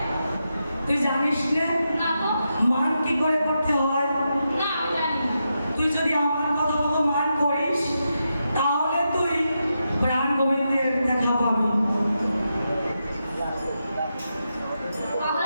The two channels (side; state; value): both; inverted; correlation -0.86